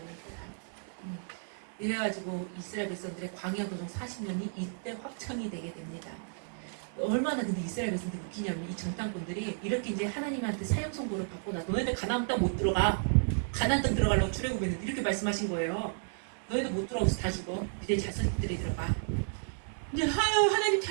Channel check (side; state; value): left; silent; digital silence